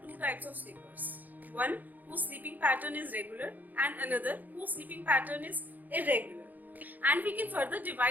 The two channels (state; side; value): late; left; 0.084 ms